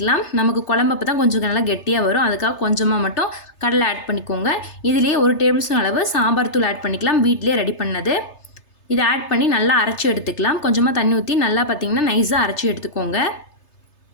நமக்கு குழம்பு அப்போ தான் கொஞ்சம் நல்லா கெட்டியாக வரும். அதுக்காக கொஞ்சமாக மட்டும் கடலை ஆட் பண்ணிக்கோங்க. இதுலேயே 1 டேபிள் ஸ்பூன் அளவு சாம்பார் தூள் ஆட் பண்ணிக்கலாம், வீட்டிலே ரெடி பண்ணது. இதை ஆட் பண்ணி நல்லா அரைச்சி எடுத்துக்கலாம். கொஞ்சமாக தண்ணி ஊற்றி நல்லா பார்த்திங்கன்னா நைஸாக அரைச்சி எடுத்துக்கோங்க.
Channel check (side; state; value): right; late; 3.3 ms